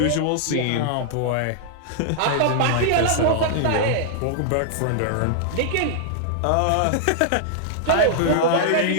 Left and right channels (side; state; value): both; different; correlation -0.01